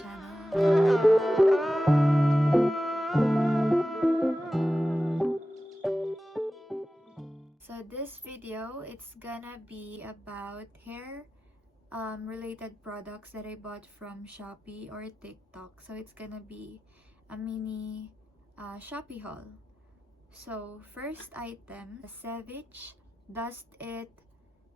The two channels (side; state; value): both; normal; correlation 0.93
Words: So this video, it's gonna be about hair related products that I bought from Shopee or TikTok. So it's gonna be a mini Shopee haul. So first item, Savage Dust It.